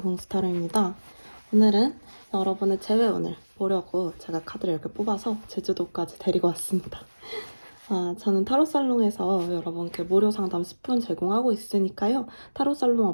공스타르입니다. 오늘은 여러분의 재회원을 보려고 제가 카드를 이렇게 뽑아서 제주도까지 데리고 왔습니다. 저는 타로살롱에서 여러분께 무료 상담 10분 제공하고 있으니까요. 타로살롱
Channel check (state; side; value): inverted; both; correlation -1.00